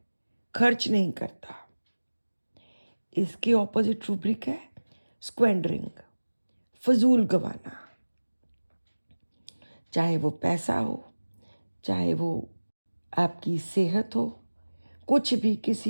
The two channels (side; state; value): both; inverted; correlation -1.00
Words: खर्च नहीं करता। इसके ऑपोजिट रूब्रिक है स्क्वेंडरिंग, फजूल गवाना। चाहे वो पैसा हो, चाहे वो आपकी सेहत हो, कुछ भी,